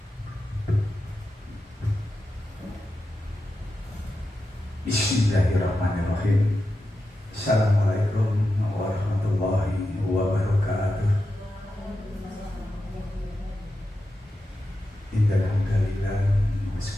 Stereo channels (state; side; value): normal; both; correlation 0.90